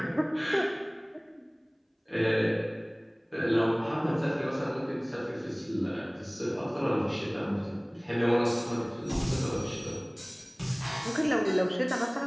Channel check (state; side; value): identical; both; correlation 1.00